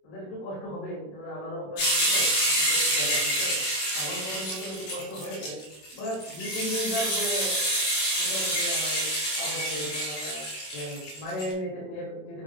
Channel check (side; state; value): right; late; 27 ms